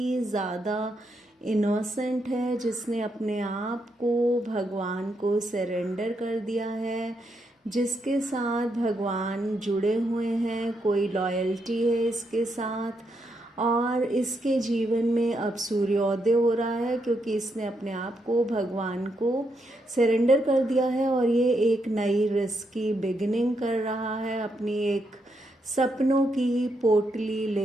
ज़्यादा इनोसेंट है, जिसने अपने आप को भगवान को सरेंडर कर दिया है, जिसके साथ भगवान जुड़े हुए हैं, कोई लॉयल्टी है इसके साथ। और इसके जीवन में अब सूर्योदय हो रहा है, क्योंकि इसने अपने आप को भगवान को सरेंडर कर दिया है और ये एक नई रिस्क की बिगिनिंग कर रहा है। अपनी एक सपनों की पोटली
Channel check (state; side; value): normal; both; correlation 0.80